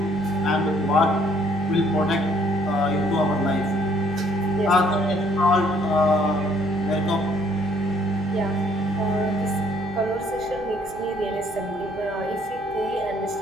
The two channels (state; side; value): noise; right; hum, 19 dB below the sound